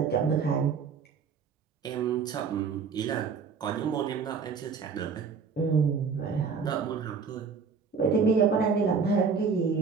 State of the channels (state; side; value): quieter; left; 5.7 dB